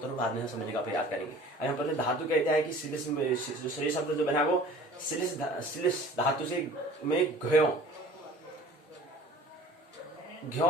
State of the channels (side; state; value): both; normal; correlation 0.46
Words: बाद में समझने का प्रयास करेंगे। यहाँ पर धातु कहता है कि श्लेष शब्द जो बना वो श्लेष धातु से में